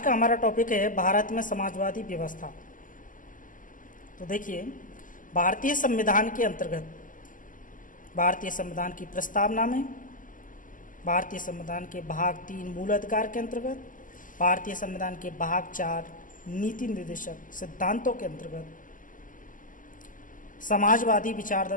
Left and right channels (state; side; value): late; right; 0.38 ms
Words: का हमारा टॉपिक है भारत में समाजवादी व्यवस्था। तो देखिए, भारतीय संविधान के अंतर्गत भारतीय संविधान की प्रस्तावना में, भारतीय संविधान के भाग 3 मूल अधिकार के अंतर्गत, भारतीय संविधान के भाग 4 नीति निर्देशक सिद्धांतों के अंतर्गत समाजवादी विचार